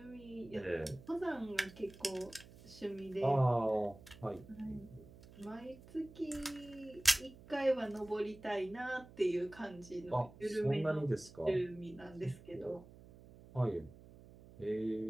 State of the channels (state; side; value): noise; right; hum, 19 dB below the sound